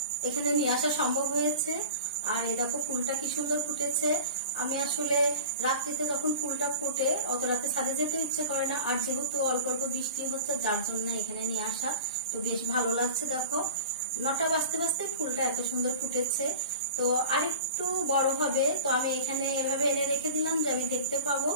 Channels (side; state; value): both; inverted; correlation -0.36